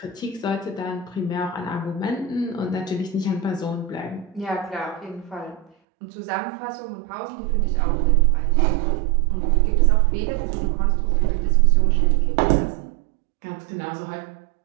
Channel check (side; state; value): left; drops out; at 5.7 s